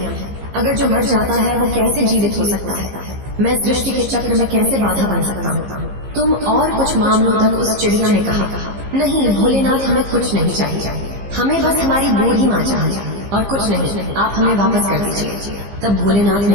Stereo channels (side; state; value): left; late; 15 ms